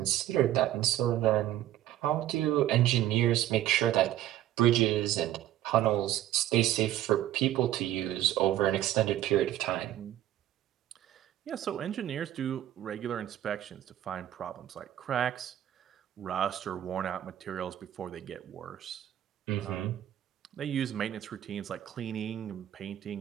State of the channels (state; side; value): quieter; left; 12.8 dB